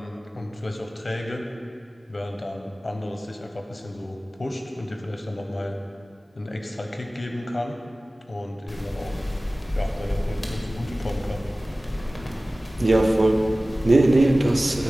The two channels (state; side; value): normal; both; correlation 0.97